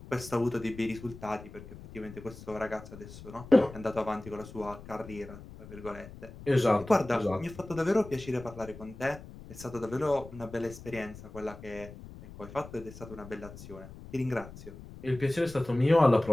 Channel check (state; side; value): noise; left; rumble, 15 dB below the sound